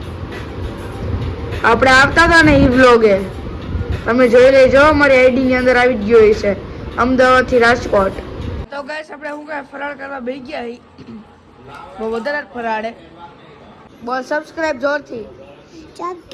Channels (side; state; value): both; identical; correlation 1.00